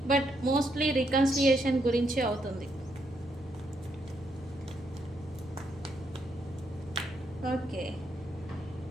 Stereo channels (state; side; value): normal; both; correlation 0.77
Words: బట్ మోస్ట్లీ రికన్సిలియేషన్ గురించి అవుతుంది. ఓకే.